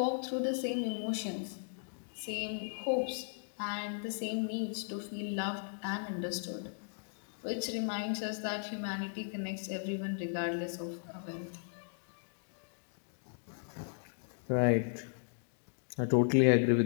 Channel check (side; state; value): right; silent; digital silence